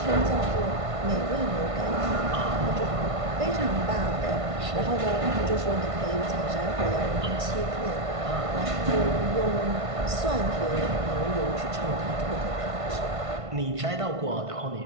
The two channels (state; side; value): late; left; 1.5 ms